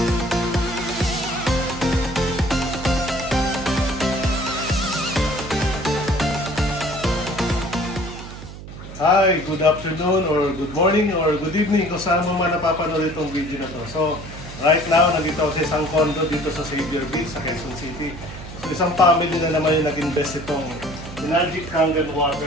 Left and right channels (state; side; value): noise; right; hum, 13 dB below the sound